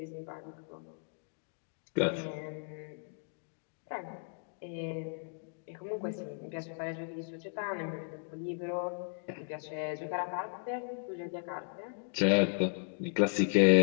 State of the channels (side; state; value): right; silent; 54 dB below the other